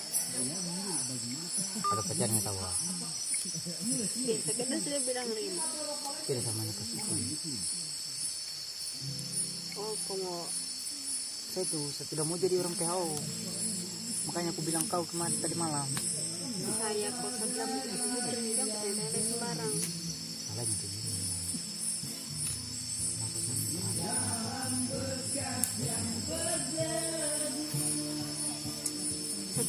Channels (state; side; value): identical; both; correlation 1.00